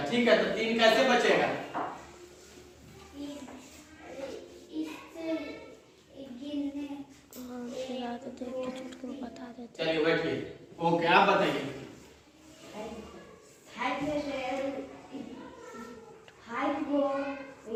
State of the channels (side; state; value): both; identical; correlation 1.00